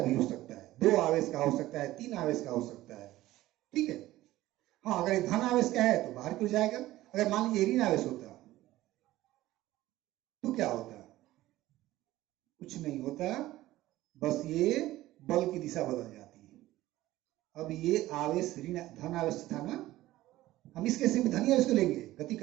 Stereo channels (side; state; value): left; quieter; 16.2 dB